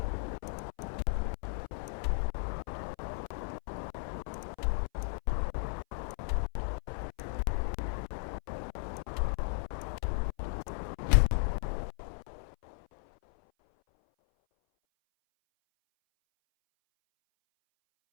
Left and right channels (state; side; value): silent; right; 54 dB below the other